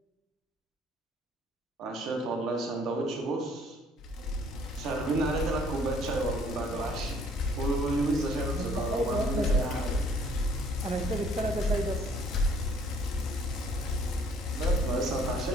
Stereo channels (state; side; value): normal; both; correlation 0.60